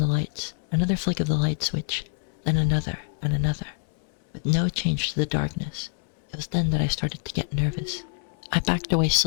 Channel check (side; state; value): right; silent; 61 dB below the other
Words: lights, another flick of the light switch, then another and another, with no change to the darkness. It was then that I started to get nervous. I backed away